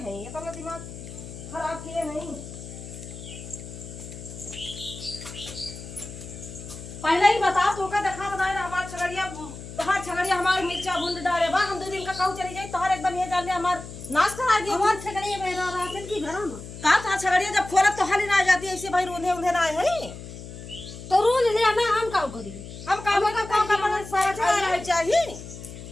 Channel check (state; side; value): noise; left; hum, 12 dB below the sound